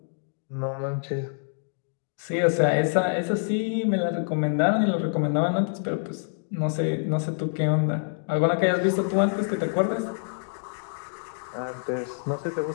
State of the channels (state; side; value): silent; right; digital silence